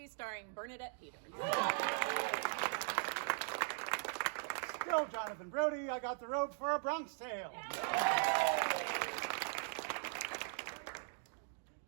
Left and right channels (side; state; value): left; silent; digital silence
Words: starring Bernadette Peters. Still Jonathan Brody. I got the robe for A Bronx Tale.